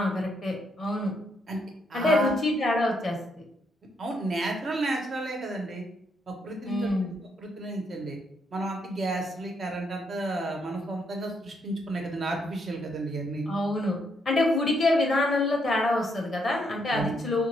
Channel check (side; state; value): both; normal; correlation 0.75